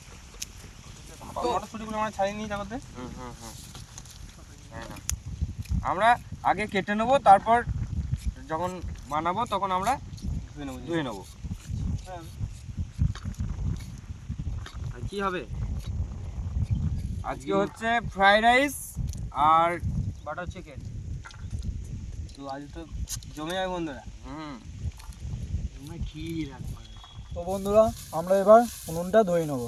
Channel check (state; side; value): identical; both; correlation 1.00